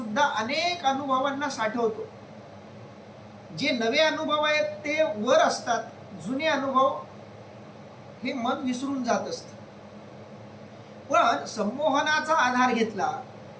अनेक अनुभवांना साठवतो. जे नवे अनुभव आहेत ते वर असतात, जुने अनुभव हे मन विसरून जात असतं. पण संमोहनाचा आधार घेतला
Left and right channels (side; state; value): both; identical; correlation 1.00